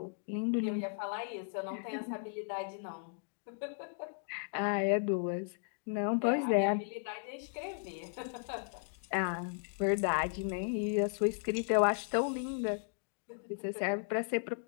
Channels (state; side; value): silent; right; digital silence